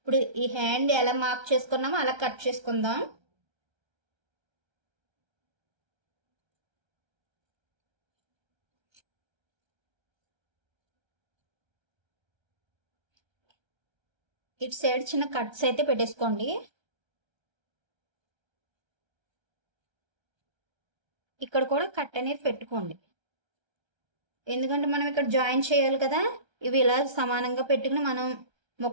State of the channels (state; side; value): late; left; 1.3 ms